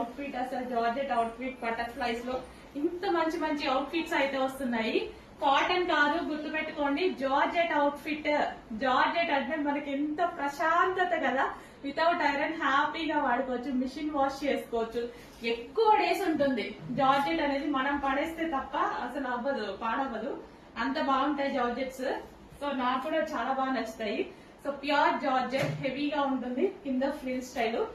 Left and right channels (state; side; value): identical; both; correlation 1.00